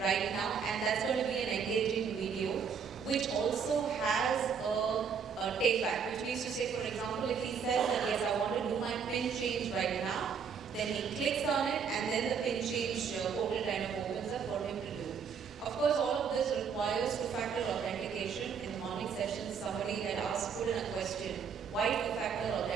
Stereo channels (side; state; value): left; quieter; 6.6 dB